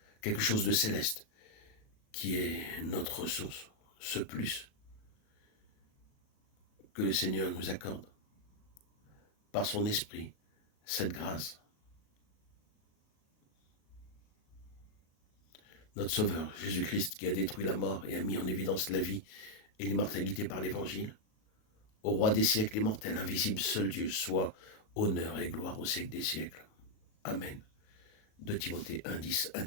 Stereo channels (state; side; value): late; right; 37 ms